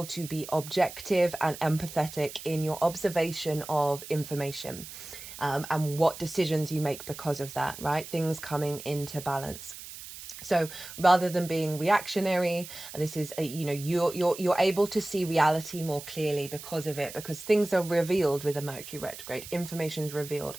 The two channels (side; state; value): right; noise; hiss, 13 dB below the sound